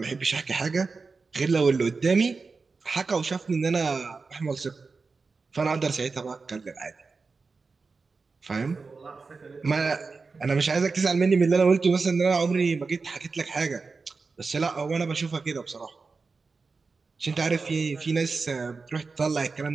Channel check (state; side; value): quieter; left; 4.4 dB